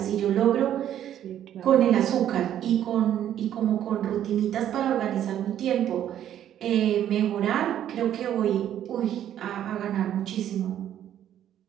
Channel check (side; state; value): left; quieter; 10.9 dB